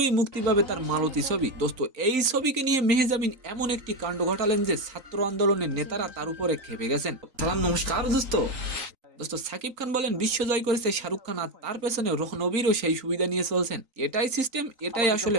মুক্তি পাবে তার মালতী ছবি। দোস্ত এই ছবিকে নিয়ে মেহজাবিন এমন একটি কাণ্ড ঘটালেন যে ছাত্র আন্দোলনের নেতারা তার উপরে খেপে গেছেন। সালাম নমস্কার দোস্ত। দোস্ত সাকিব খান বলেন বিশ্বজয় করেছে শাহরুখ খান, আর তার পেছনে রণবীরও সেই সুবিধা নিয়ে চলছেন। এটাই সিস্টেম, এটাই আসলে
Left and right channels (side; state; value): left; late; 3.9 ms